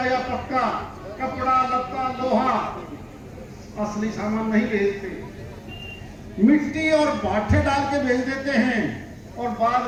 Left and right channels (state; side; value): identical; both; correlation 1.00